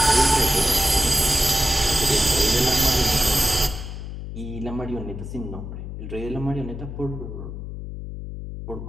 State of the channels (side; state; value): left; noise; hum, 9 dB below the sound